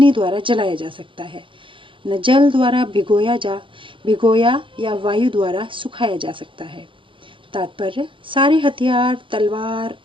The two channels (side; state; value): left; late; 0.25 ms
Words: द्वारा जलाया जा सकता है, न जल द्वारा भिगोया या वायु द्वारा सुखाया जा सकता है। तात्पर्य, सारे हथियार, तलवार,